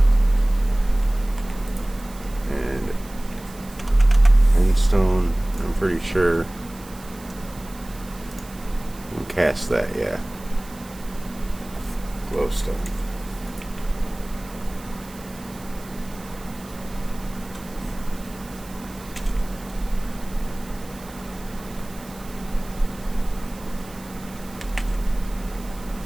And endstone, I'm pretty sure. We'll cast that, yeah. Glowstone.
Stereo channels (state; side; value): noise; right; hiss, 20 dB below the sound